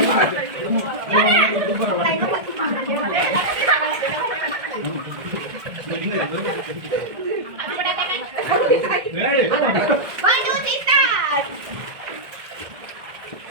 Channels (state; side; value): late; left; 1.7 ms